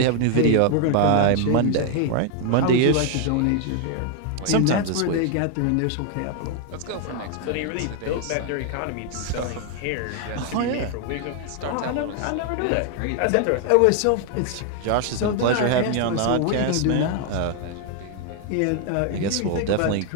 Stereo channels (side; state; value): both; different; correlation 0.00